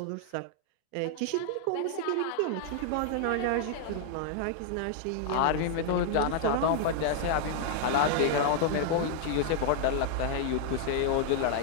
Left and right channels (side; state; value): both; different; correlation -0.01